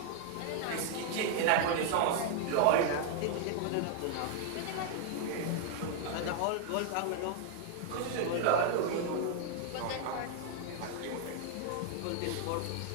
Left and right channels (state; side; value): different; both; correlation 0.00